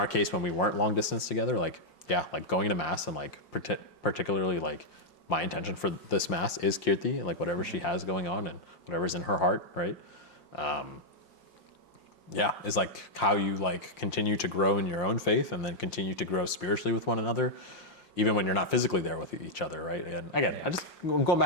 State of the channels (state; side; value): late; right; 5.8 ms